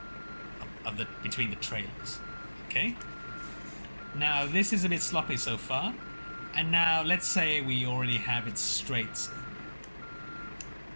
the between the trailers. Okay. Now this is a bit sloppy so far, and now let's say we already have it straight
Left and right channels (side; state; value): both; inverted; correlation -1.00